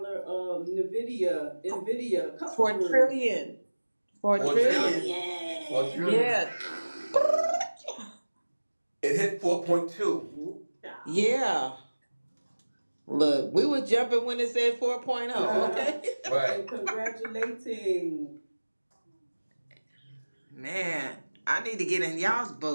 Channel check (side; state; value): both; inverted; correlation -1.00